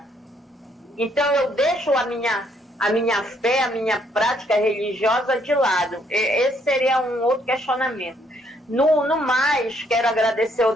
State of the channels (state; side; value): normal; both; correlation 0.69